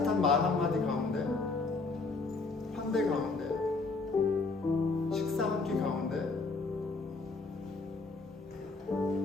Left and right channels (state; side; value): quieter; right; 3.8 dB